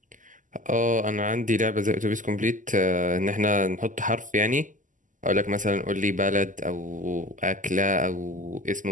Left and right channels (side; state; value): left; late; 0.37 ms